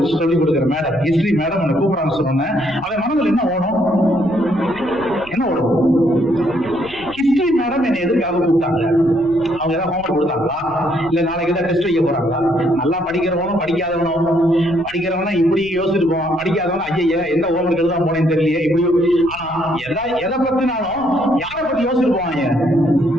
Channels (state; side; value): noise; left; rumble, 21 dB below the sound